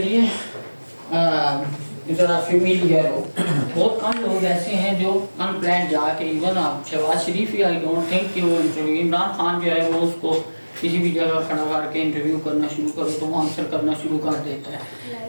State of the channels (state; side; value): inverted; both; correlation -1.00